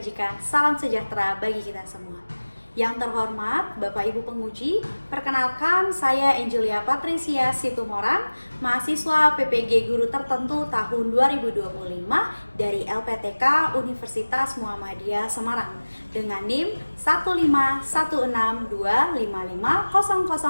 salam sejahtera bagi kita semua. Yang terhormat Bapak Ibu Penguji, perkenalkan saya Angelia Patricia Situmorang, mahasiswa PPG Guru Tertentu tahun 2025 dari LPTK Universitas Muhammadiyah Semarang dengan NIM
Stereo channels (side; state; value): both; inverted; correlation -1.00